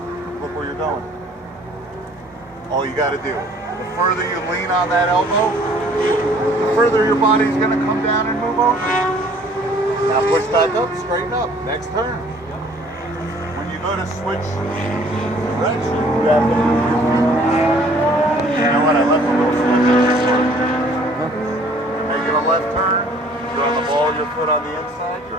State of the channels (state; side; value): normal; both; correlation 0.56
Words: Look where you're going. All you got to do. The further you lean on that elbow, the further your body's going to come down and move over. Now push back up, straighten up. Next turn. When you go to switch direction, you have to move your feet. You know what? I left a little slip in this part. You're making a left turn. You're on the ball, your foot on the inside.